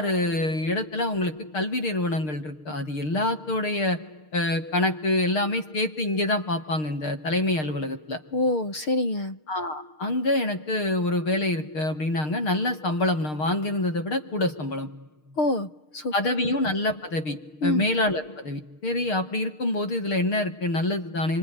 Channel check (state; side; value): late; right; 6.5 ms